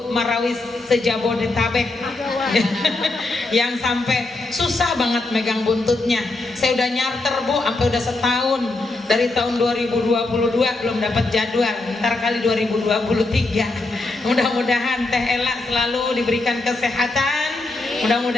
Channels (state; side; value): quieter; right; 3.1 dB